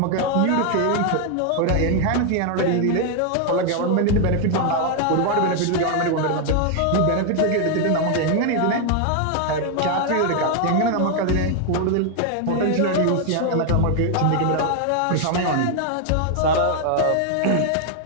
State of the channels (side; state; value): both; different; correlation 0.00